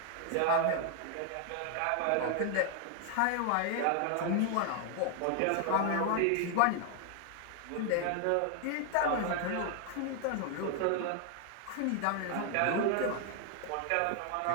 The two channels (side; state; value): both; different; correlation 0.00